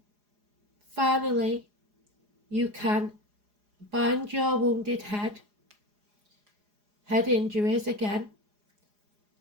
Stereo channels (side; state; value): left; late; 4.8 ms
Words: Finally, you can bind your wounded head injuries again,